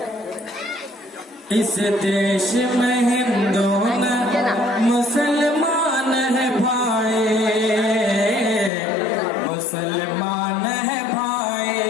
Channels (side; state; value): right; drops out; at 8.7 s